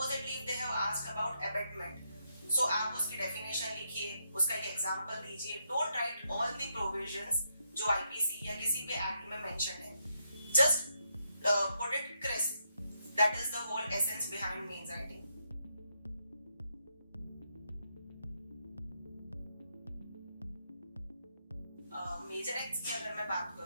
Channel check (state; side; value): inverted; both; correlation -0.79